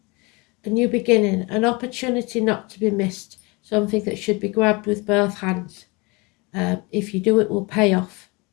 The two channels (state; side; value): quieter; right; 26.8 dB